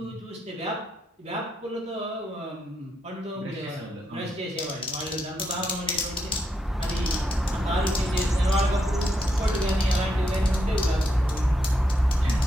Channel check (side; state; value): both; normal; correlation 0.81